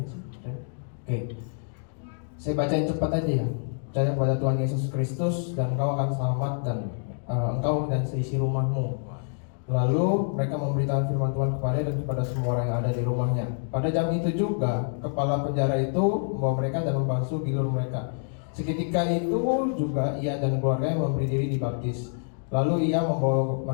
sih. Oke. Saya bacain cepat aja ya. Percaya pada Tuhan Yesus Kristus dan engkau akan selamat, dan engkau dan seisi rumahmu. Lalu mereka memberitakan firman Tuhan kepada dan kepada semua orang yang ada di rumahnya. Pada jam itu juga kepala penjara itu membawa mereka dan membasuh gilur mereka. Seketika itu juga ia dan keluarganya memberi diri dibaptis. Lalu ia membawa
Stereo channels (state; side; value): silent; right; digital silence